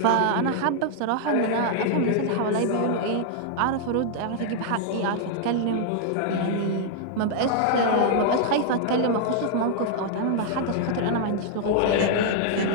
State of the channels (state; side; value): different; both; correlation -0.01